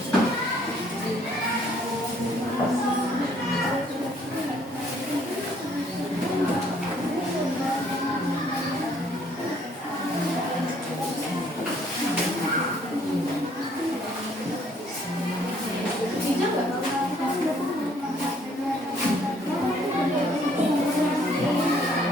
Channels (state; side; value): normal; both; correlation 0.63